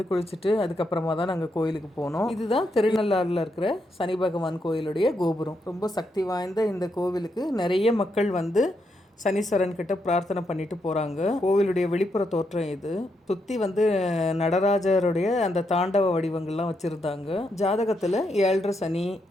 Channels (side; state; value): both; normal; correlation 0.80